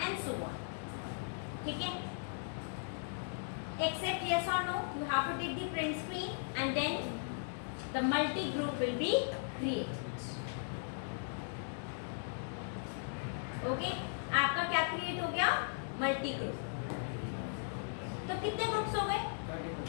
so on. ठीक है, except yes or no, you have to take the print screen and then the multi group will be created. Okay, आपका क्या create हो गया, multi group. तो कितने groups हो गए,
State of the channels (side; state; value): right; silent; digital silence